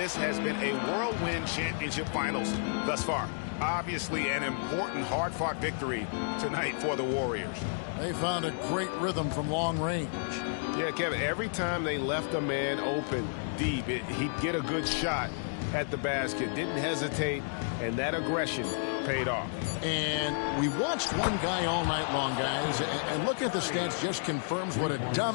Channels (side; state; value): right; silent; digital silence